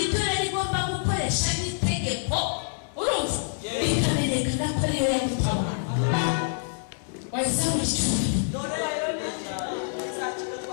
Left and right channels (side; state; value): right; silent; 58 dB below the other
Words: ibyo rero igomba gukoresha n'itegeko urumva bikamenyekana ko ariyo yagutama wahise mu cyumba